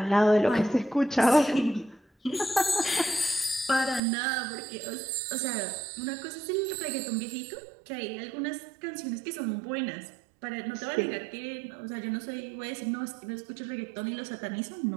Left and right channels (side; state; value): left; drops out; at 4.0 s